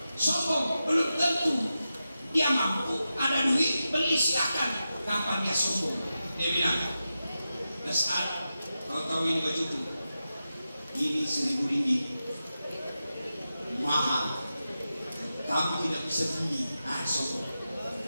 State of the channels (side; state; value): both; inverted; correlation -0.91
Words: sombong, belum tentu dia mampu, ada duit, beli silakan. Kapan dia sombong? Dia bilang, Dasar, kau tahu ini bajuku, ini 1.000 ringgit, mahal, kamu tidak bisa beli. Sombong.